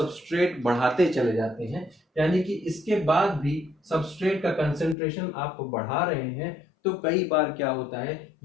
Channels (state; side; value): drops out; right; at 5.0 s